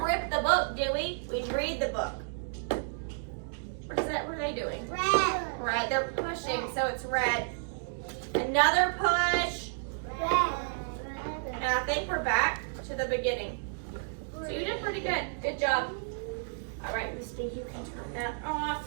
rip the book, do we? We read the book. What is that? What are they doing? Red. They're pushing, so it's red. Another push. And I think we're back to the beginning. So you did pretty good. Good job. All right, Misty, you can turn that off.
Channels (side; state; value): left; silent; digital silence